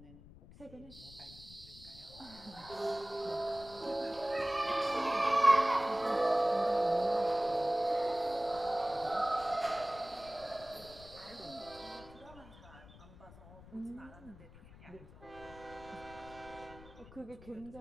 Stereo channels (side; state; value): left; noise; rumble, 19 dB below the sound